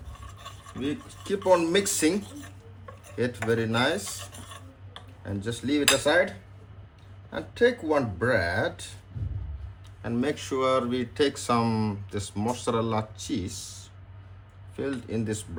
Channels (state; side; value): identical; both; correlation 1.00